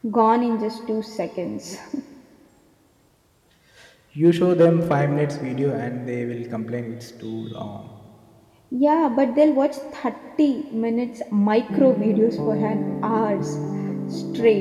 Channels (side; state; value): both; identical; correlation 1.00